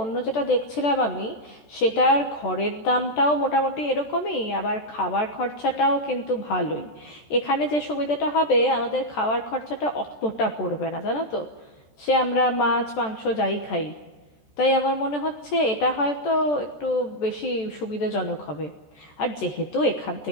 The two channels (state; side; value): late; right; 14 ms